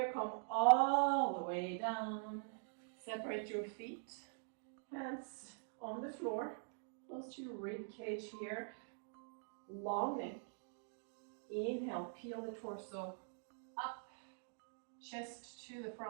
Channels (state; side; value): silent; left; digital silence